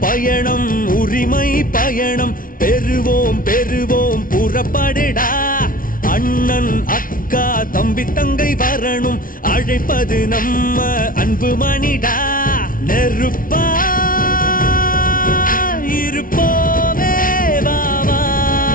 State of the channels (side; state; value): right; late; 0.40 ms